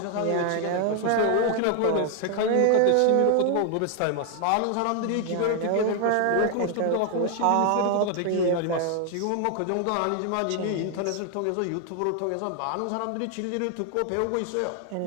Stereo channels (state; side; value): different; both; correlation 0.00